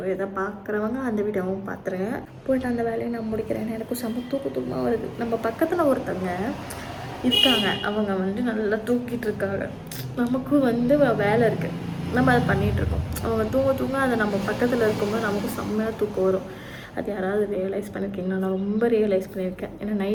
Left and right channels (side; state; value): both; identical; correlation 1.00